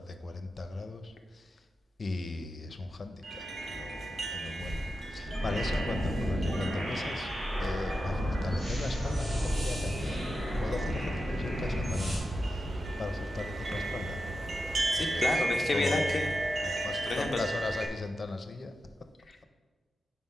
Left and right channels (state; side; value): normal; both; correlation 0.90